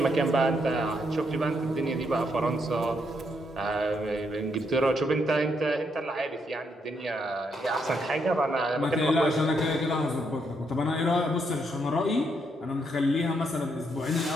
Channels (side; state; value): both; normal; correlation 0.77